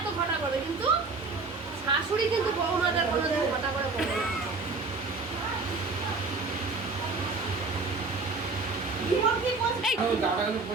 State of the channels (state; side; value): quieter; left; 4.0 dB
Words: ঘটা করবে, কিন্তু শাশুড়ি কিন্তু বৌমাদের কোনো ঘটা করে করবে না।